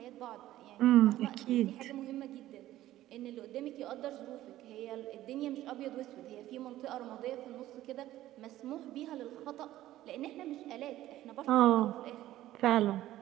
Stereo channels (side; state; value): left; quieter; 14.4 dB